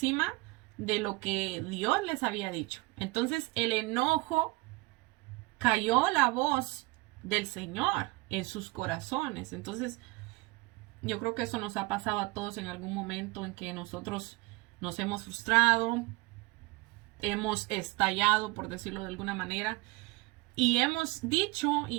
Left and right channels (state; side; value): quieter; left; 23.2 dB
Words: de lo que Dios les había dicho. Entonces el enojo cayó la voz del Señor en sus corazones. Entonces yo creo que eso nos ha pasado a todos en algún momento en que nosotros nos hemos frustrado, hemos estallado, por decirlo de alguna manera, y hemos dicho